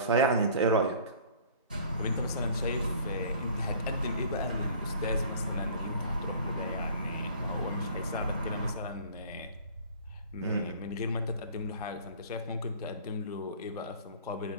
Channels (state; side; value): inverted; both; correlation -0.49